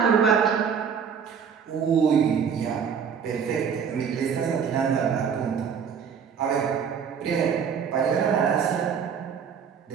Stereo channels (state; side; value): quieter; left; 7.0 dB